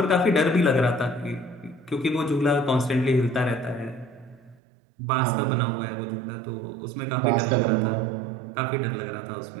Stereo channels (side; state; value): left; drops out; at 4.6 s